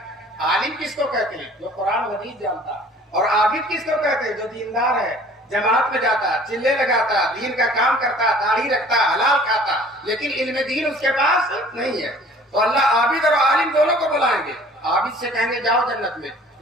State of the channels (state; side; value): normal; both; correlation 0.51